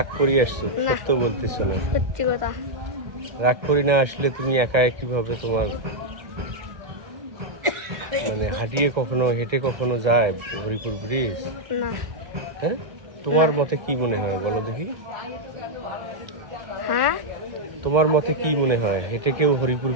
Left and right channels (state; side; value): late; left; 1.2 ms